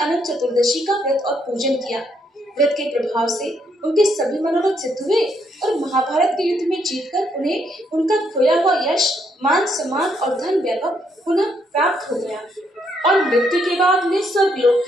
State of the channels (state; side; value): normal; both; correlation 0.74